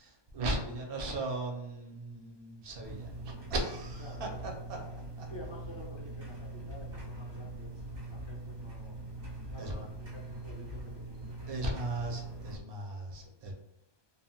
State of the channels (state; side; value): late; left; 1.2 ms